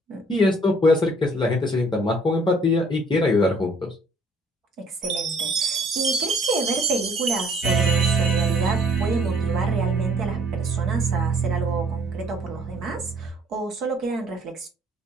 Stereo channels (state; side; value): normal; both; correlation 0.60